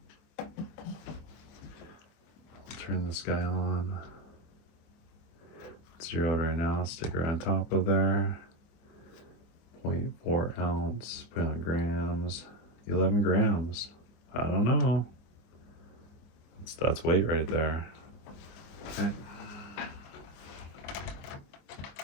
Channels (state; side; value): late; right; 25 ms